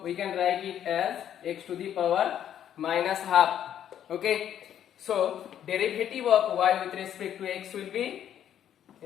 we can write it as x to the power minus half. Okay. So derivative of y with respect to x will be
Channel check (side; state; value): right; quieter; 10.2 dB